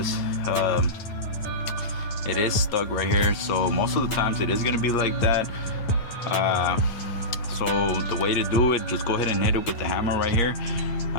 it is stuck right here. So most of the times it is gonna be like that. So the way to do it, just go ahead and hit it with the hammer right here.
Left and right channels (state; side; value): late; right; 9.5 ms